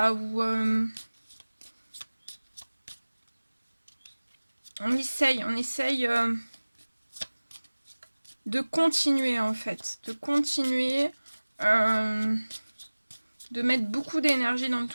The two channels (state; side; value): inverted; both; correlation -1.00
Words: ou on essaye de continuer en fait, de continuer, de mettre beaucoup d'énergie dans